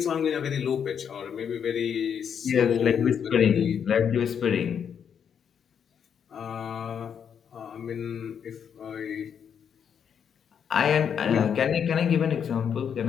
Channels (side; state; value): right; quieter; 7.7 dB